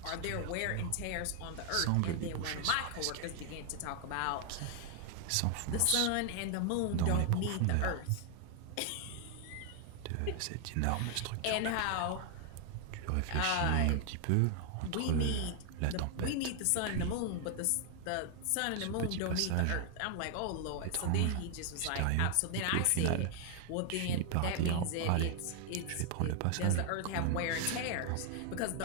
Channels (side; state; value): both; different; correlation 0.00